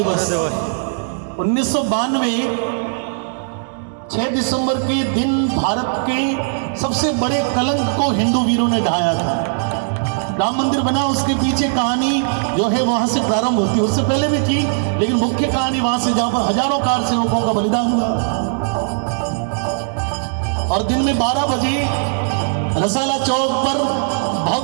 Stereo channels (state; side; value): silent; left; digital silence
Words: 1992 6 दिसंबर के दिन भारत के सबसे बड़े कलंक को हिंदू वीरों ने ढाया था। राम मंदिर बना, उसके पीछे कहानी जो है वहां से प्रारंभ होती है। उससे पहले भी थी, लेकिन मुख्य कहानी वहां से जहां पर हजारों कार सेवकों का बलिदान हुआ। और दिन में 12 बजे रसाला चौक पर